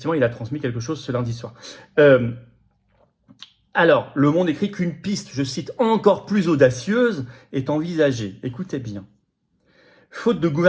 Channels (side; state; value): both; identical; correlation 1.00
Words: il a transmis quelque chose ce lundi soir. Alors, Le Monde écrit qu'une piste, je cite, encore plus audacieuse est envisagée. Écoutez bien. Faute de